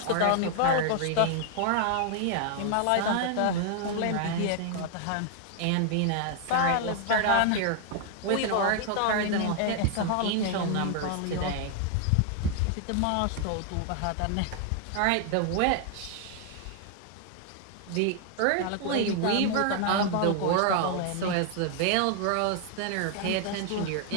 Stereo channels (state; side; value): different; both; correlation 0.00